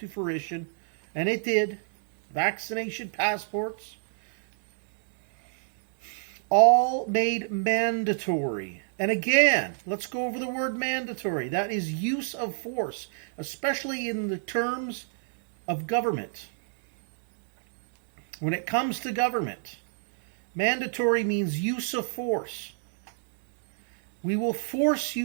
fruition. And it did. Vaccination passports. All made mandatory. And again, let's go over the word mandatory. That is use of force, especially in the terms of government. When it comes to government, mandatory means use of force. We will force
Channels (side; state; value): left; silent; digital silence